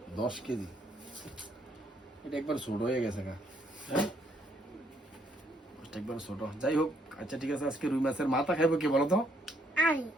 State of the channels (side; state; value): both; normal; correlation 0.70